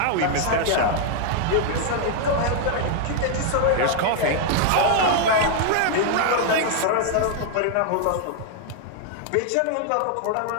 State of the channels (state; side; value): different; both; correlation 0.00